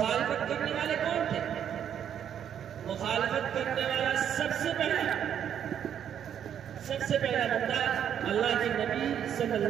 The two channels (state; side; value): quieter; left; 9.2 dB